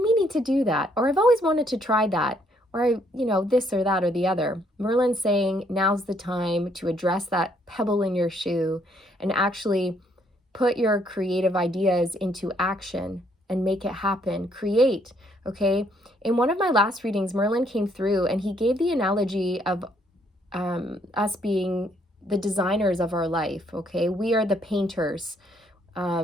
meaning to do that. Or I've always wanted to try that. Or, this or that or the other. Merlin's saying now's the time to address that pebble in your shoe and actually put your creative ideas into action and make it happen. Create, okay? In one of my last readings, Merlin came through and he gave the analogy of us being the designers of our life, okay? We are the painters.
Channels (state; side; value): normal; both; correlation 0.69